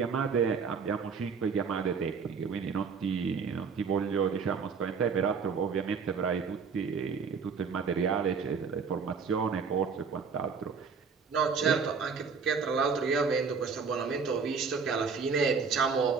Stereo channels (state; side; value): quieter; left; 5.6 dB